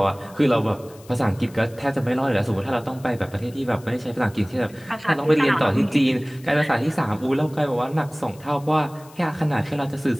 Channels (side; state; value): left; noise; hiss, 24 dB below the sound